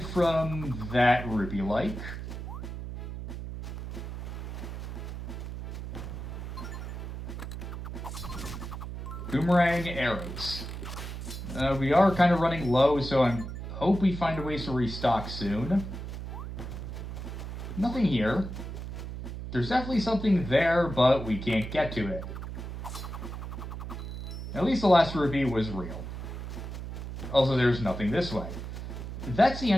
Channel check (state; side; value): noise; right; hum, 7 dB below the sound